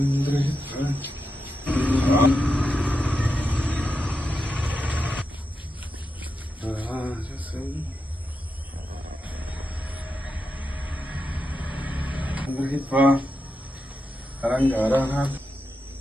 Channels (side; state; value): both; normal; correlation 0.87